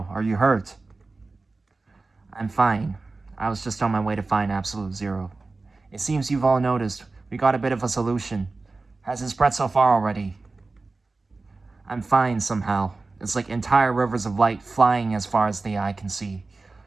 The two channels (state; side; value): quieter; left; 3.6 dB